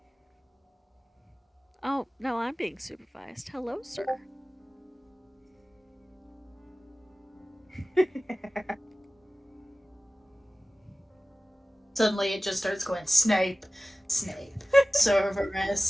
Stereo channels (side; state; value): both; normal; correlation 0.97